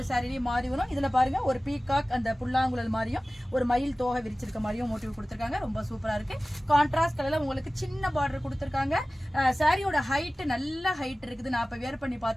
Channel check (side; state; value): both; normal; correlation 0.97